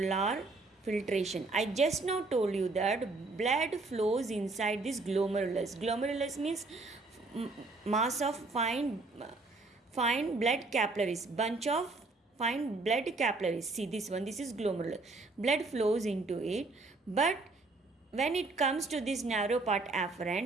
filtration. I just now told you that blood flows inside this glomerulus. Glomerulus means mass of fine blood capillaries, bunch of fine blood capillaries. See this one, this is glomerulus. Blood flows into it, but when it comes to this narrow part afferent,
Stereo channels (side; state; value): left; quieter; 3.5 dB